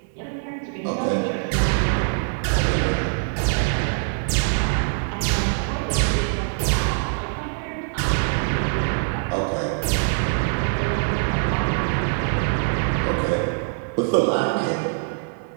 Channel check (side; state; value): left; silent; 63 dB below the other